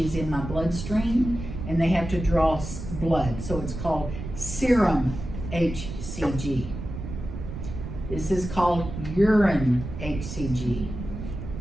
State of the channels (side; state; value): right; noise; rumble, 8 dB below the sound